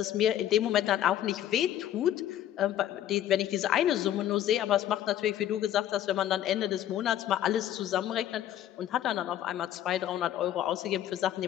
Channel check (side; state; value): right; quieter; 11.8 dB